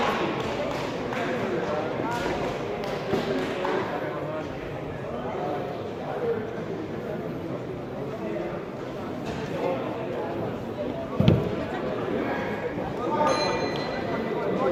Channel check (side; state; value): both; identical; correlation 1.00